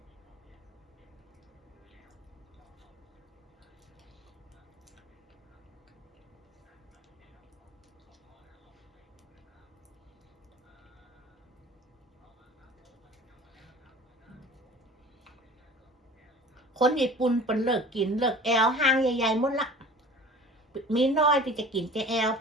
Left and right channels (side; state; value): both; normal; correlation 0.43